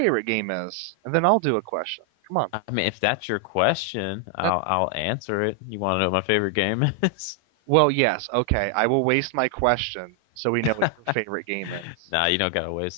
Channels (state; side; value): normal; both; correlation 0.00